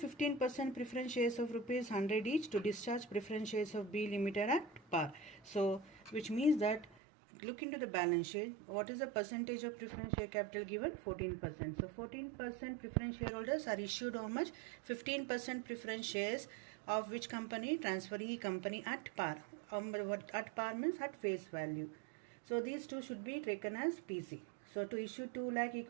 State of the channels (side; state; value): left; drops out; at 7.0 s